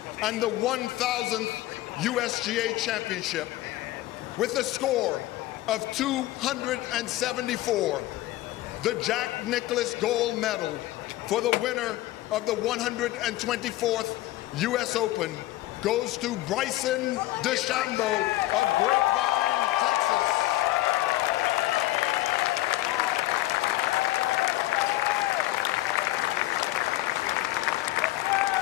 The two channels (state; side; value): quieter; right; 16.8 dB